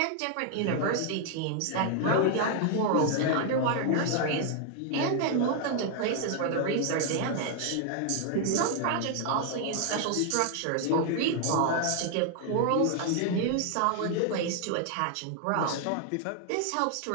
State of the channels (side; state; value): both; different; correlation 0.00